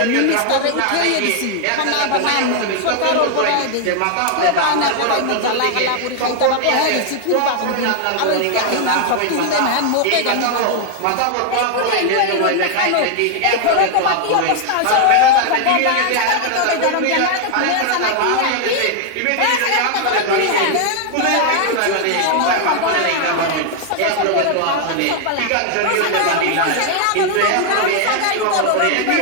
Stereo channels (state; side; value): different; both; correlation 0.00